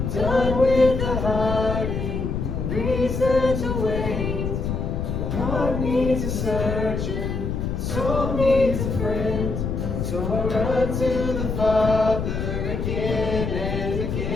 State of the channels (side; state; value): left; noise; rumble, 2 dB below the sound